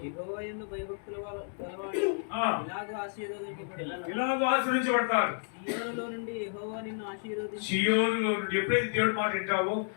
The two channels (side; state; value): right; silent; digital silence